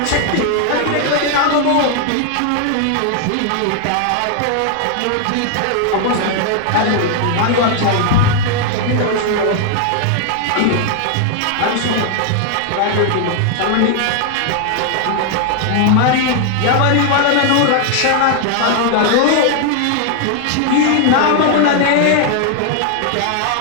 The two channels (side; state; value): both; different; correlation 0.00